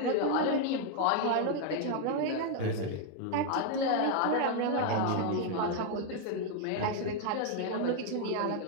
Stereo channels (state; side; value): different; both; correlation 0.00